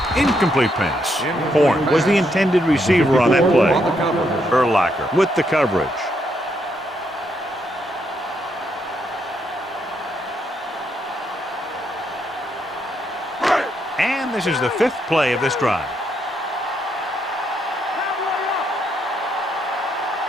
Incomplete pass. Horn was the intended receiver on that play. Urlacher with the coverage. And this is the 5th play of this drive.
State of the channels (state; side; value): normal; both; correlation 0.77